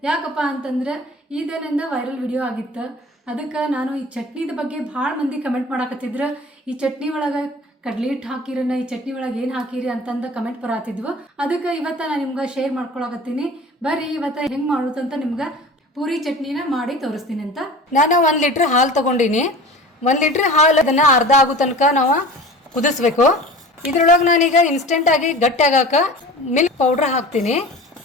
ಯಾಕಪ್ಪ ಅಂತಂದ್ರೆ ಇದರಿಂದ ವೈರಲ್ ವಿಡಿಯೋ ಆಗಿತ್ತು. ಅದಕ್ಕೆ ನಾನು ಈ ಚಟ್ನಿದ ಬಗ್ಗೆ ಭಾಳ ಮಂದಿ ಕಮೆಂಟ್ ಮಾಡಾಕತ್ತಿದ್ರು. ಈ ಚಟ್ನಿ ಒಳಗೆ ಕಡ್ಲಿ ಹಿಟ್ಟು ಹಾಕಿರನ, ಈ ಚಟ್ನಿ ಒಳಗೆ ಏನು ಹಾಕಿರಿ ಅಂತಂದು ಕಮೆಂಟ್ ಬರತ್ತಿದ್ವು. ಅದಕ್ಕೆ ಇವತ್ತು ನಾನು ನಿಮ್ಗೆ ಶೇರ್ ಮಾಡ್ಕೊಳಕತ್ತೀನಿ. ಬರ್ರಿ ಇವತ್ತು ಹೆಂಗೆ ಮಾಡೋದಂತ ನಿಮ್ಗೆ ಪೂರಿ ಚಟ್ನಿನ ಮಾಡಿ ತೋರಿಸ್ತೀನಿ ಅಂತ. ನಾನು 1 ಲೀಟ್ರ್ ಹಾಲು ತೊಗೊಂಡಿನಿ. 1 ಲೀಟ್ರ್ ಹಾಲು ಅದನ್ನು ಅರ್ಧ ಆಗೋ ತನಕ ನಾವು ಕುದಿಸ್ಬೇಕು. ಇದ್ರೊಳಗೆ ನಾನೀಗ ಇನ್ಸ್ಟೆಂಟಾಗಿ ಗಟ್ಟಿ ಆಗಾಕ ಮಿಲ್ಕ್ ಪೌಡ್ರ್ ಹಾಕ್ತೀನಿ.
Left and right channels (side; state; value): both; normal; correlation 0.39